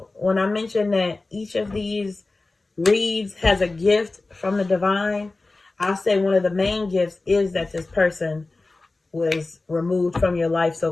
when I mentioned that each of these reads has a gift from the divine, I'll say one of the main gifts is that this person was removed from your life so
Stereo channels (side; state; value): right; quieter; 3.3 dB